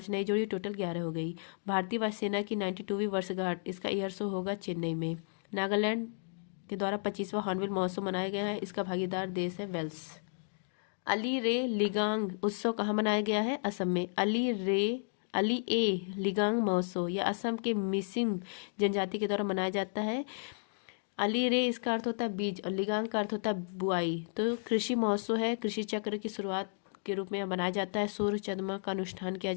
नई जोड़ी, टोटल 11 हो गई। भारतीय वायुसेना की 92वीं वर्षगांठ, इसका ईयर शो होगा चेन्नई में। नागालैंड के द्वारा 25वां हॉर्नबिल महोत्सव मनाया गया है, इसका भागीदार देश है वेल्स। अली रे लिगांग उत्सव कहाँ मनाया गया है? असम में। अली ए लिगांग महोत्सव यह असम के मिसिम जनजाति के द्वारा मनाया जाता है। अली रे इसका अर्थ होता है बीज और लिगांग का अर्थ होता है बुआई। तो कृषि महोत्सव है, कृषि चक्र की शुरुआत के रूप में यह मनाया जाता है। सूर्य चंद्रमा का अनुष्ठान किया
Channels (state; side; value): silent; right; digital silence